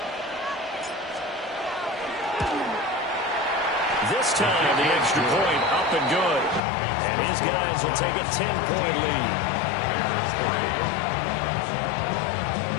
This time, the extra point up and good. And his guys will take a 10-point lead.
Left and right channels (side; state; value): right; drops out; at 6.6 s